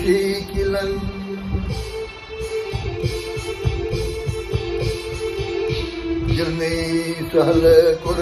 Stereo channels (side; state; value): both; identical; correlation 1.00